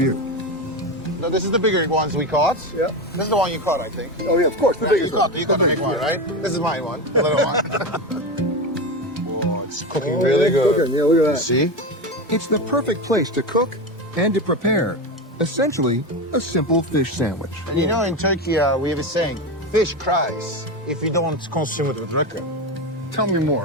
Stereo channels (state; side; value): normal; both; correlation 0.19